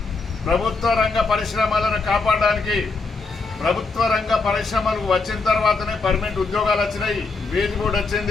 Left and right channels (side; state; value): right; quieter; 4.0 dB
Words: ప్రభుత్వ రంగ పరిశ్రమలను కాపాడడానికి. ప్రభుత్వ రంగ పరిశ్రమలు వచ్చిన తర్వాతనే పర్మనెంట్ ఉద్యోగాలు వచ్చినాయి, వేజ్ బోర్డు